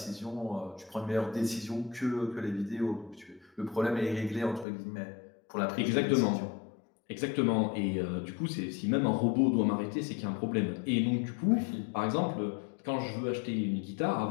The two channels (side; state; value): right; drops out; at 4.7 s